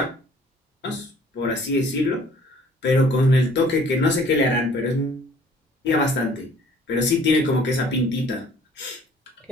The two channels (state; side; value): normal; both; correlation 0.55